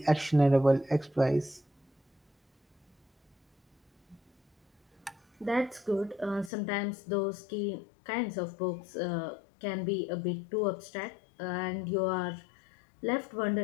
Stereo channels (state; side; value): drops out; right; at 6.5 s